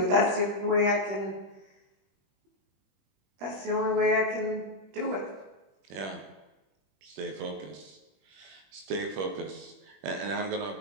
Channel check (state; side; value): late; left; 21 ms